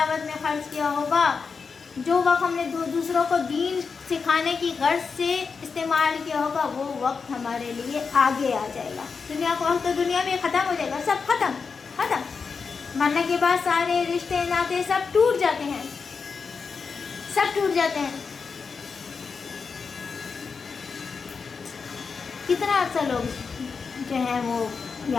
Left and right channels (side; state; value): right; quieter; 5.3 dB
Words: میں خرچ کیا ہوگا، جو وقت ہم نے دوسروں کو دین سکھانے کی غرض سے استعمال کیا ہوگا، وہ وقت ہمارے لیے آگے آ جائے گا. دنیا کا وقت تو دنیا میں ختم ہو جائے گا، سب ختم. مرنے کے بعد سارے رشتے ناطے سب ٹوٹ جاتے ہیں، سب ٹوٹ جاتے ہیں. کتنا عرصہ لوگ جو ہیں وہ